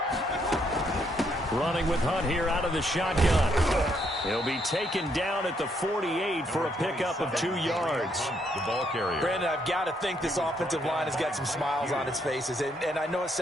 Running with Hunt here out of the shotgun. He'll be taken down at the 48 for a pickup of 2 yards. The ball carrier. Brandon, I've got to think this offensive line has got some smiles on its faces. And I know it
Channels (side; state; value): both; normal; correlation 0.73